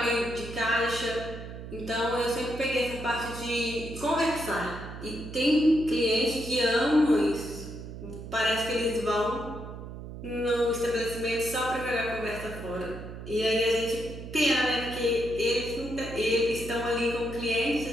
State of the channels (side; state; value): right; noise; hum, 11 dB below the sound